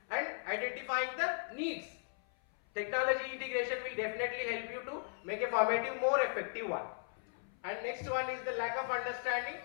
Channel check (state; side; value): silent; right; 53 dB below the other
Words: and identifying the needs. Technology integration will definitely help you to make a formative more effective one. And next one is the lack of understanding.